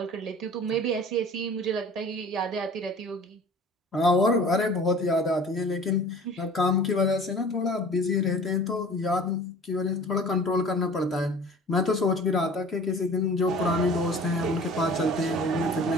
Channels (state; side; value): normal; both; correlation 0.45